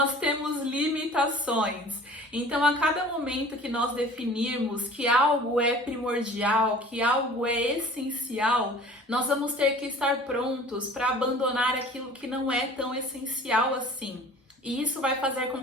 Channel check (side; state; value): both; normal; correlation 0.45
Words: temos limitações. Então, a cada momento que nós definirmos que algo é primordial, que algo é essencial, nós vamos ter que estar prontos para abandonar aquilo que não é tão essencial assim. E isso vai fazer com